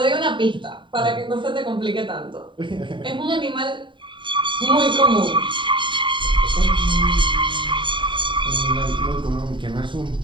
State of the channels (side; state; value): left; late; 0.23 ms